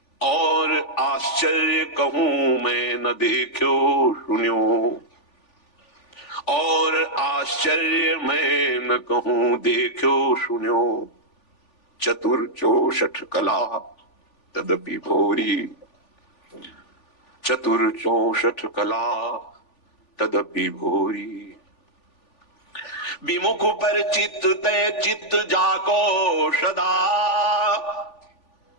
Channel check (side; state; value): right; late; 3.4 ms